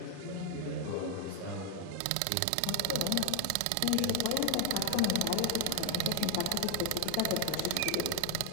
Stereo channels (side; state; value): both; different; correlation 0.00